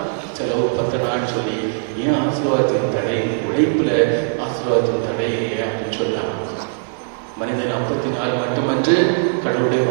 செலவு பத்தனான்னு சொல்லி ஏன் ஆசீர்வாதத்தின் தடை? உழைப்புல ஆசீர்வாதத்தின் தடை அப்படின்னு சொன்னாங்க. மனிதன் 54 மட்டுமன்று, கடவுளுடைய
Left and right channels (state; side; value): silent; left; digital silence